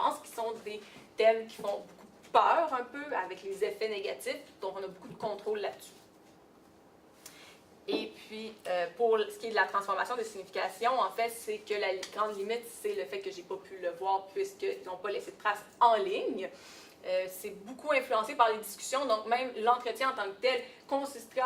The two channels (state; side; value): identical; both; correlation 1.00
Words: qui sont des thèmes qui font beaucoup peur un peu, avec les effets négatifs, donc on a beaucoup de contrôle là-dessus. Et puis, pour ce qui est de la transformation de signification, en fait, c'est que la grande limite, c'est le fait que j'ai pas pu le voir puisqu'ils n'ont pas laissé de traces en ligne. C'est beaucoup influencé par les discussions, donc même l'entretien en tant que tel consisterait